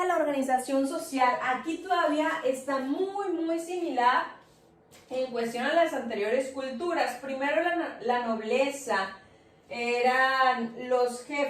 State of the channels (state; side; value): identical; both; correlation 1.00